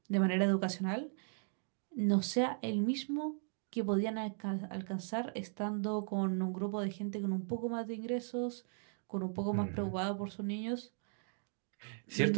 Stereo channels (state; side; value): silent; left; 53 dB below the other